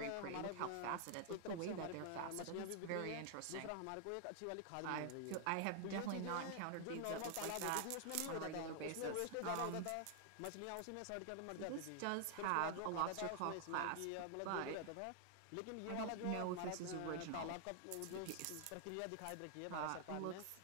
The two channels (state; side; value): different; both; correlation 0.00